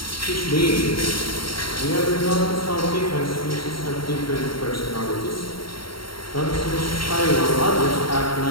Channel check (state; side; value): late; right; 0.74 ms